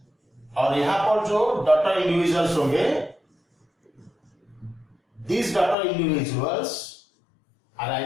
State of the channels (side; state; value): right; drops out; at 5.8 s